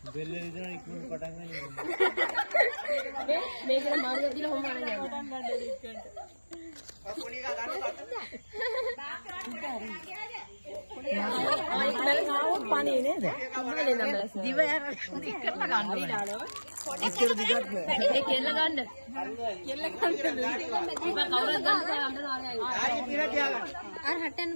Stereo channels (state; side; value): inverted; both; correlation -1.00